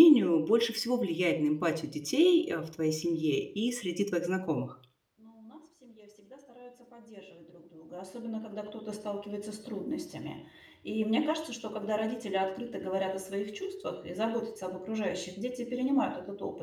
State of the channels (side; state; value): both; identical; correlation 1.00